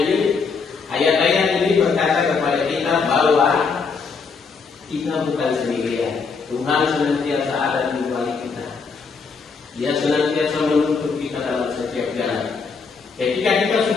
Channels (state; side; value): quieter; right; 5.1 dB